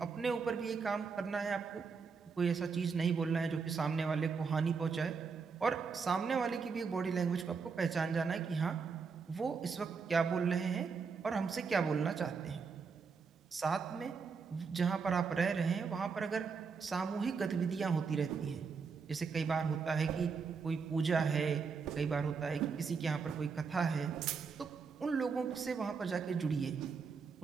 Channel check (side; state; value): left; quieter; 5.3 dB